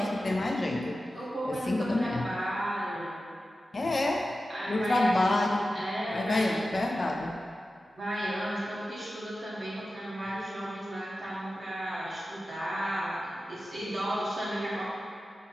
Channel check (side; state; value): both; normal; correlation 0.93